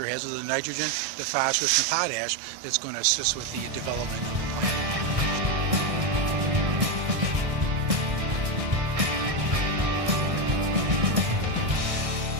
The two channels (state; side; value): late; left; 1.6 ms